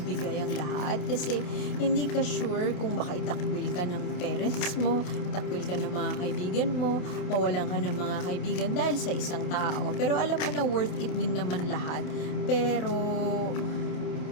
ibigay ang lahat kasi hindi ka sure kung baka itakwil ka ng parents mo, itakwil ka ng mga kaibigan mo, mawalan ka ng mga kaibigan dahil sa isang tao. Pero alam mo na worth it din naman lahat. Pero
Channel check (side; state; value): right; late; 28 ms